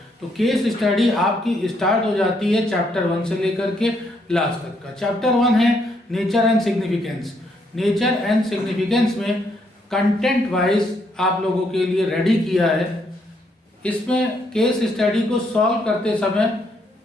तो केस स्टडी आपकी स्टार्ट हो जाती है चैप्टर 1 से लेकर के लास्ट तक का। चैप्टर 1 है nature and significance. Nature and significance में कंटेंट वाइज आप लोगों के लिए रेडी किया है। इसमें केस स्टडी को सॉल्व करते समय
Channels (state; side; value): normal; both; correlation 0.73